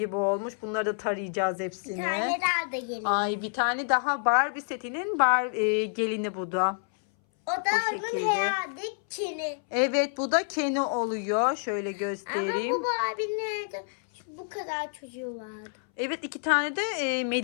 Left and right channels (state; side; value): silent; right; 59 dB below the other